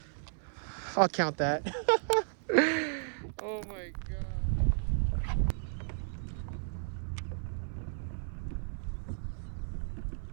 I'll count that. Oh my god.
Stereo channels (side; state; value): left; silent; 55 dB below the other